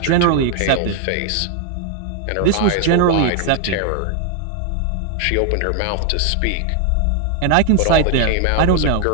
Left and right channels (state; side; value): different; both; correlation 0.01